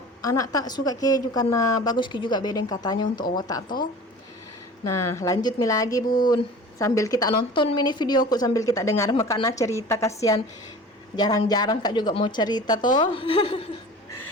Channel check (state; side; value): normal; both; correlation 0.40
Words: anak tak suka keju, karena bagus juga bedeng katanya untuk otak toh. Nah lanjut lagi bun, sambil kita nonton mini videoku, sambil kita dengar makanya cerita, kasihan. Jarang-jarang kak juga mau cerita toh.